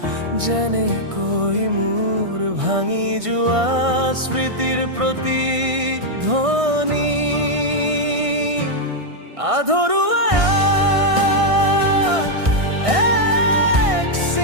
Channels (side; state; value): left; late; 1.6 ms